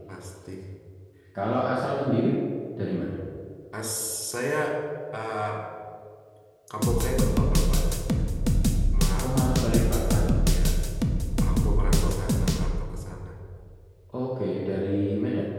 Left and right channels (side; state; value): both; identical; correlation 1.00